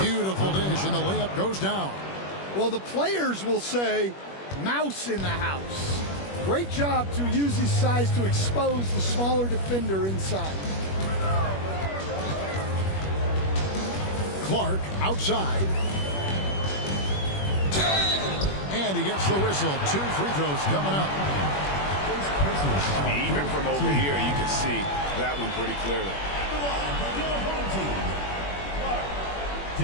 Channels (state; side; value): late; right; 21 ms